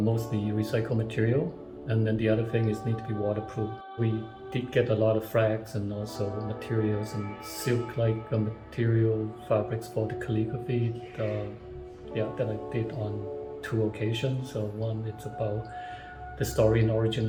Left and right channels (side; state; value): both; identical; correlation 1.00